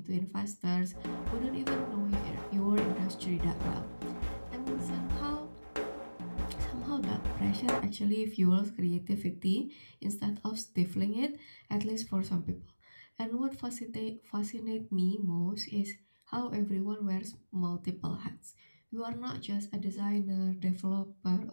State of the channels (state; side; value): inverted; both; correlation -1.00